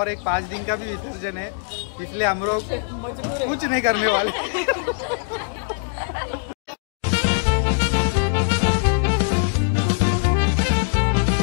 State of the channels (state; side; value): silent; right; digital silence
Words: एक 5 दिन का भी विसर्जन है, इसलिए हम लोग कुछ नहीं करने वाले.